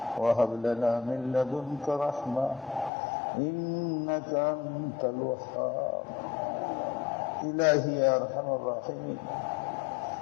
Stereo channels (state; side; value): drops out; right; at 2.9 s